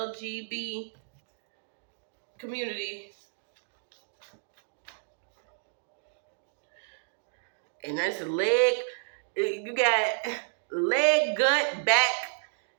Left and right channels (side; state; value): left; silent; digital silence